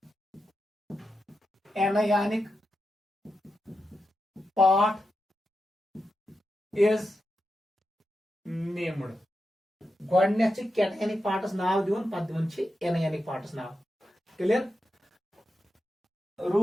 anionic part is named। गोडनेथ कैटयानिक पार्टस नाव दिवन, पत दिवन एनायनिक पार्टस नाव। क्लियर?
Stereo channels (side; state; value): both; normal; correlation 0.88